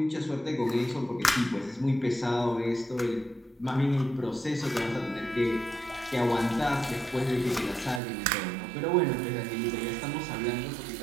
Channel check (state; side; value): drops out; left; at 8.0 s